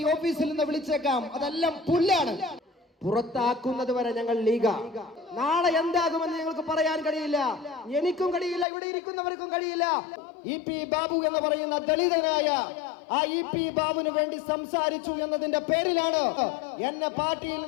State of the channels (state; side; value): drops out; right; at 8.7 s